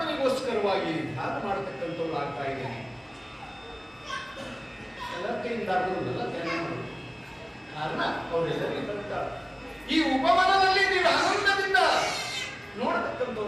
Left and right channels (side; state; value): both; identical; correlation 1.00